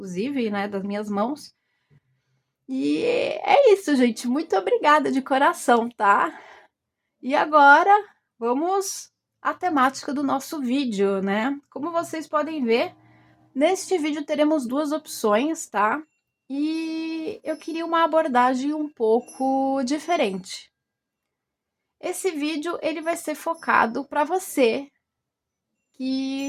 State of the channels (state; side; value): identical; both; correlation 1.00